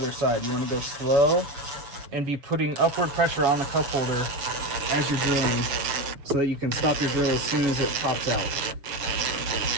side. You want to go slow and be putting upward pressure on the cup holder as you're drilling, so that you can stop your drill as soon as it pops out.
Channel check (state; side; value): late; left; 6.9 ms